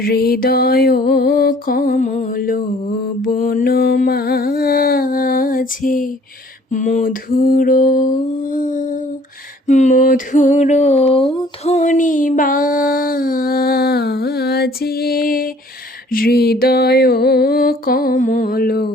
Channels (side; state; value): both; normal; correlation 0.56